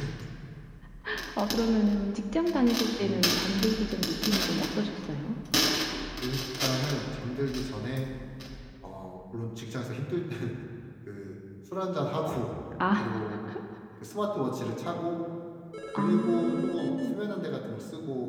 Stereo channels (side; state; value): both; identical; correlation 1.00